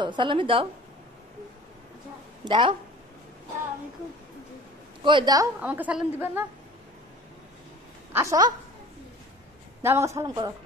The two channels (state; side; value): normal; both; correlation 0.43